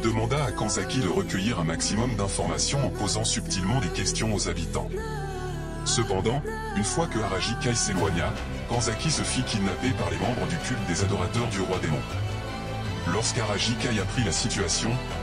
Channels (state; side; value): identical; both; correlation 1.00